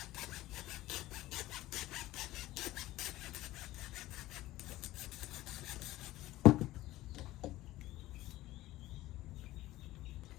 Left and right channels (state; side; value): quieter; right; 16.7 dB